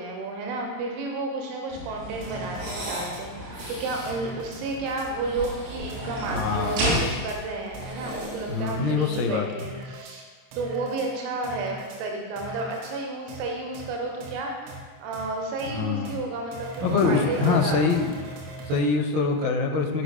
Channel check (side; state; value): left; late; 26 ms